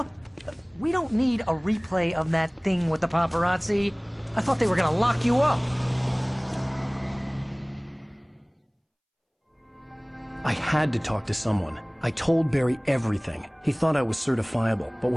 We don't need a replay of that thing with the paparazzi. I thought they were gonna lock you up. I had to talk to someone. I told Barry everything. He thought I was certifiable, but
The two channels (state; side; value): identical; both; correlation 1.00